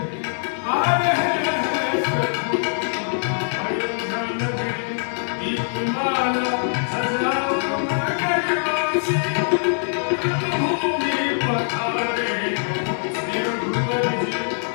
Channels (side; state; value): right; silent; digital silence